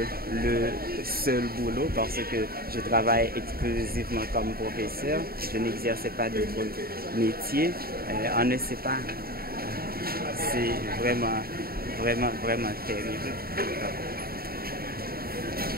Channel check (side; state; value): left; late; 0.44 ms